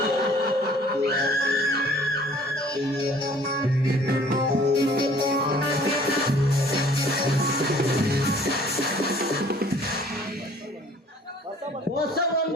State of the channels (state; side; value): normal; both; correlation 0.54